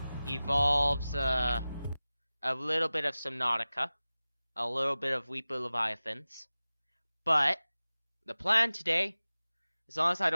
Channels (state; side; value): inverted; both; correlation -0.96